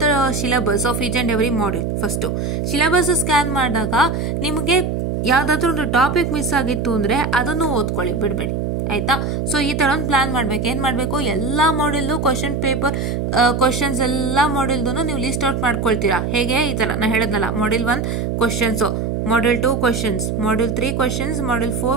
the syllabus of each and every module. First syllabus scan ಮಾಡಿದಾಗ ನಿಮಗೆ ಯಾವುದಾದ್ರೂ ಒಂದು ಟಾಪಿಕ್ ಮಿಸ್ ಆಗಿತ್ತು ಅಂದರೆ ಅದನ್ನು ಓದ್ಕೊಳ್ಳಿ, ಬಿಡಬೇಡಿ ಆಯಿತಾ. ಸೊ ಈ ಥರ ಒಂದು ಪ್ಲ್ಯಾನ್ ಮಾಡಬೇಕು. ಏನು ಮಾಡಬೇಕು, ಎಲ್ಲ ಮಾಡ್ಯೂಲ್ದು ಕ್ವಶನ್ ಪೇಪರ್ ಕ್ವಶನ್ಸ್ ಎಲ್ಲ ಮಾಡ್ಯೂಲ್ದು ನೀವು ಲಿಸ್ಟ್ ಔಟ್ ಮಾಡ್ಕೊಳ್ತೀರಾ. ಹೇಗೆ, ಈ ಥರ ನಾನು ಹೇಳಿದ್ನಲ್ಲ, module 1 questions, module 2 questions, module 3 questions, module 4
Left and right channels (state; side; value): noise; right; hum, 1 dB below the sound